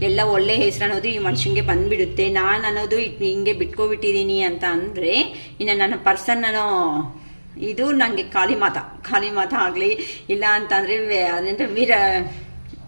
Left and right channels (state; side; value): inverted; both; correlation -1.00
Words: ಎಲ್ಲ ಒಳ್ಳೆ ಹೆಸರು ಅನ್ನೋದು ಈ ಮನುಷ್ಯನಿಗೆ ಬಂದ್ಬಿಡುತ್ತೆ. ನಾನು ಅನ್ನೋದು ಹಿಂಗೆ ಬಿಟ್ಕೊಬಿಟ್ಟಿದ್ದೀನಿ ಅಂತ ಅಂದರೆ ಇನ್ನು ನನ್ನ ಪರ್ಸನ್ ಅನ್ನೋ ಇದು ನನಗೆ ಖಾಲಿ ಮಾತ ಆಗಲಿ, ಇಲ್ಲ ಅಂತಂದರೆ ಅದೇಂದ್ರೆ